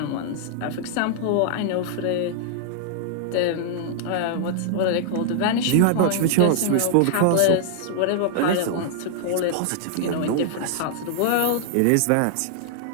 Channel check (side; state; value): both; different; correlation -0.01